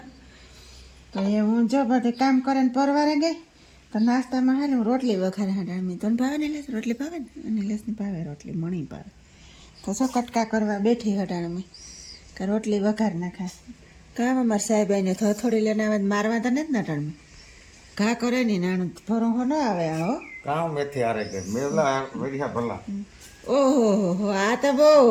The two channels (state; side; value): identical; both; correlation 1.00